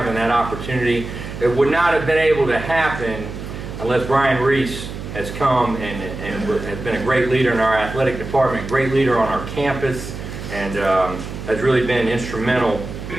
that opportunity. It would not have been able to happen unless Brian Reese has come and has been a great leader in our athletic department, great leader on our campus, and has really been instrumental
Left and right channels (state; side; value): noise; right; hum, 9 dB below the sound